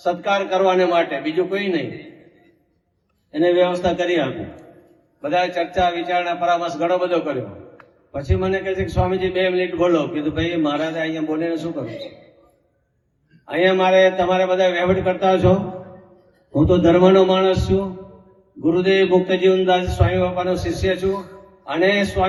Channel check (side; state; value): both; identical; correlation 1.00